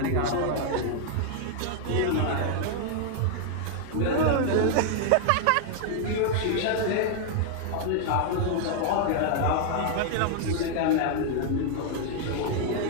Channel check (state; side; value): different; both; correlation 0.00